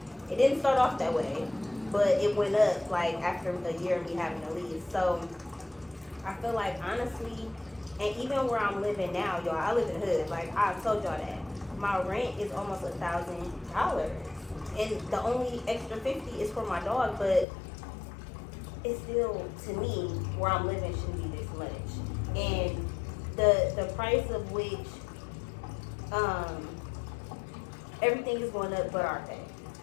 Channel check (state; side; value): drops out; right; at 17.4 s